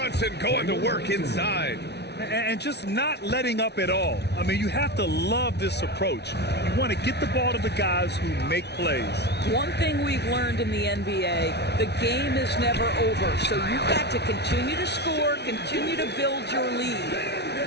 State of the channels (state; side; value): late; right; 0.49 ms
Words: going to work inside. And just not letting up at all. I mean, you have to love this approach. You want to get the ball to the guys who make plays. One thing we've learned in the NBA, the game is never over. So you've got to continue to score, continue to build your